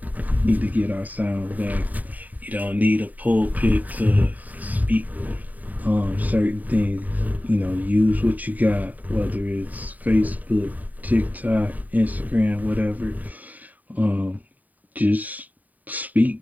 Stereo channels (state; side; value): late; left; 0.078 ms